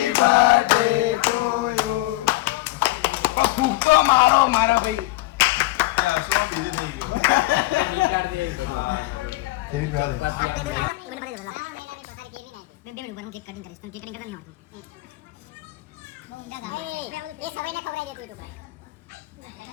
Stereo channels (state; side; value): quieter; right; 19.7 dB